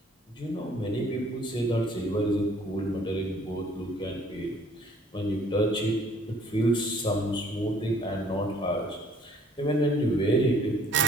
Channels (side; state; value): both; normal; correlation 0.58